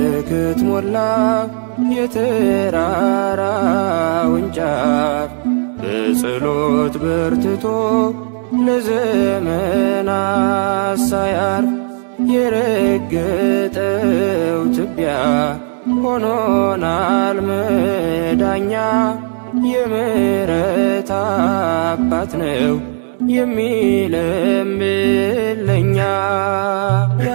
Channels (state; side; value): silent; left; digital silence